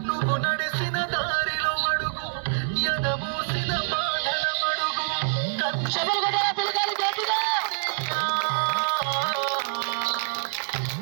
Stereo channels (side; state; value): left; silent; digital silence